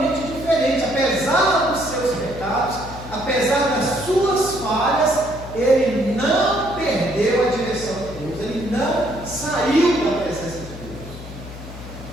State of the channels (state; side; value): noise; left; hum, 13 dB below the sound